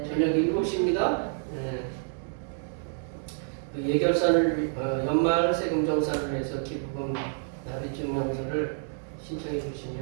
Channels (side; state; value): left; silent; digital silence